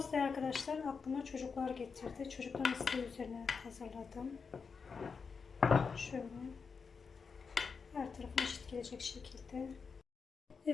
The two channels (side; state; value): right; quieter; 5.4 dB